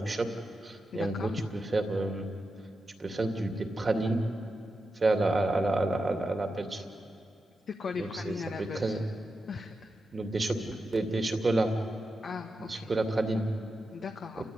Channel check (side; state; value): both; normal; correlation 0.89